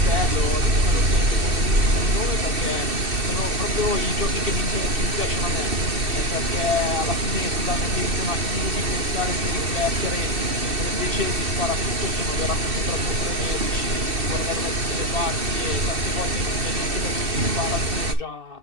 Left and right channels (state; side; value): late; left; 2.6 ms